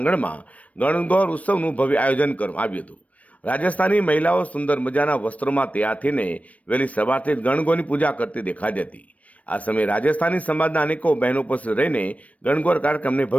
ગણગોર ઉત્સવનું ભવ્ય આયોજન કરવામાં આવ્યું હતું। રાજસ્થાની મહિલાઓ સુંદર મજાના વસ્ત્રોમાં તૈયાર થઈને વહેલી સવારથી જ ગણગોરની પૂજા કરતી દેખાઈ હતી। આ સમયે રાજસ્થાની સમાજના અનેકો બહેનો ઉપસ્થિત રહીને ગણગોર કાર્યક્રમને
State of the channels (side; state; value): right; late; 0.067 ms